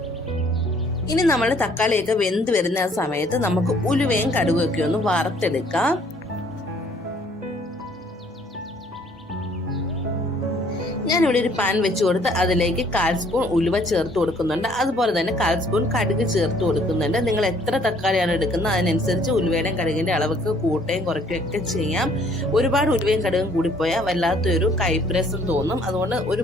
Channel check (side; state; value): both; normal; correlation 0.61